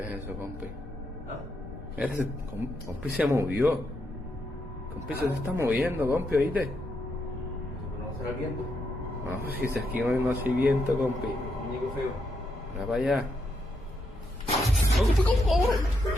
es eso, compi? ¿Ah? Mira, compi se movió. Compi se está moviendo, compi, ¿oíste? Eso no será el viento. No, si aquí no hay viento, compi. Muñeco feo. Mira para allá.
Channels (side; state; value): both; normal; correlation 0.80